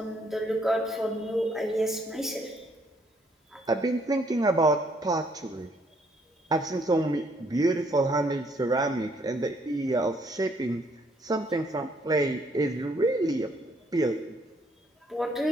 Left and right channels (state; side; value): normal; both; correlation 0.68